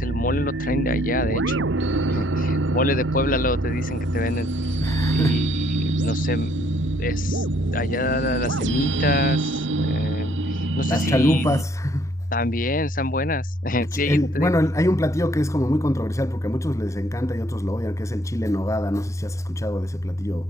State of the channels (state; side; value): normal; both; correlation 0.65